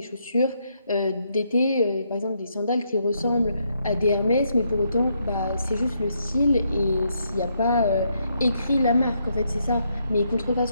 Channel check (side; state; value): both; inverted; correlation -0.76